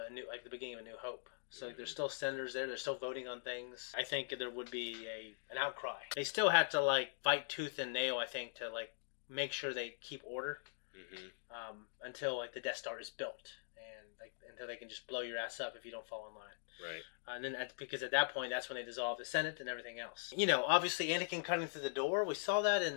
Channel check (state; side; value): silent; right; digital silence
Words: the beginning of A New Hope. So there's still senators there. They're still voting on things. I think there would be an outcry. They still have to like fight tooth and nail. I think to like make sure they keep order until like the Death Star is built and like until they can just blow your ass up if you don't fall in line. Right. And then because at that point that's when they dissolve the Senate and everything else. You know, obviously Anakin cutting through the door. We saw that in